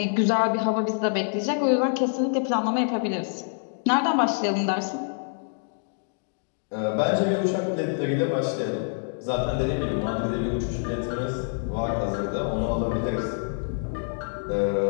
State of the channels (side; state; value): right; silent; digital silence